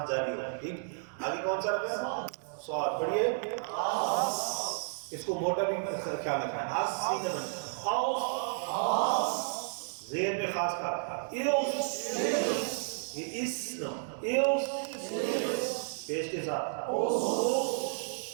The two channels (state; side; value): silent; left; digital silence